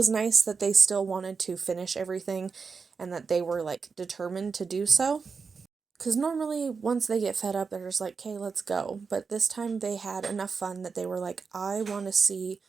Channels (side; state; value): left; quieter; 5.2 dB